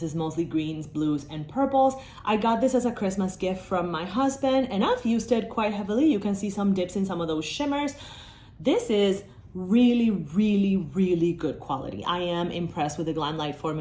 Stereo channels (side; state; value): both; identical; correlation 1.00